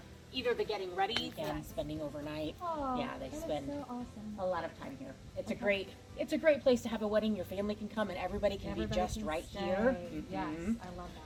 either the getting ready and spending overnight. Oh, Yeah, they that is spend so awesome. a lot of time here. It's a great place to have a wedding. Your family can come and everybody can be just can right stay. here. Yes, Mhm. I love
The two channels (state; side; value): identical; both; correlation 1.00